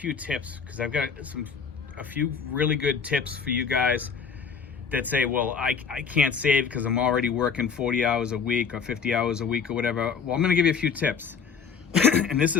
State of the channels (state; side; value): quieter; right; 6.2 dB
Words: tips, because I've got a few really good tips for you guys that say, well, I can't save because I'm already working 40 hours a week or 50 hours a week or whatever. Well, I'm going to give you a few tips, and this